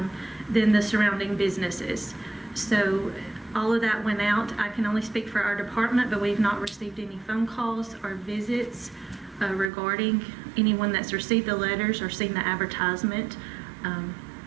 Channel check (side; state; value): left; drops out; at 9.7 s